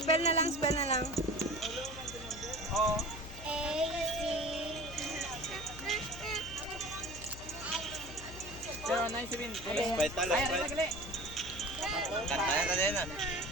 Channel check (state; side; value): noise; left; hum, 14 dB below the sound